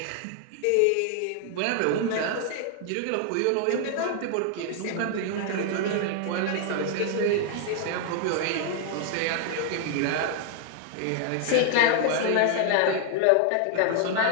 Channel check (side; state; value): both; different; correlation 0.00